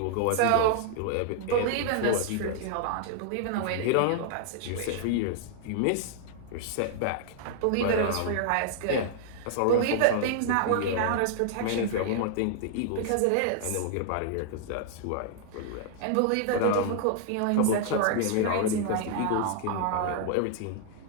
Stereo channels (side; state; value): both; different; correlation -0.01